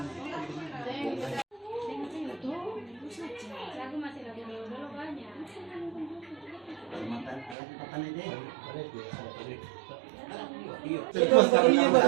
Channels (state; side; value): drops out; left; at 7.6 s